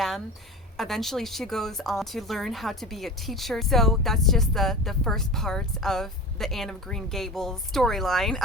Eventually she goes on to learn how to be a teacher. So that's just the first part of the Anne of Green Gables storyline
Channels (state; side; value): normal; both; correlation 0.33